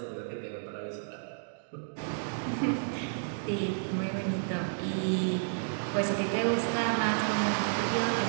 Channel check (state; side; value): silent; left; digital silence